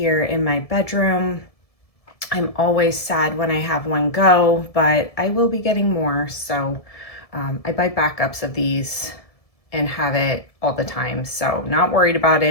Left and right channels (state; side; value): late; right; 1.7 ms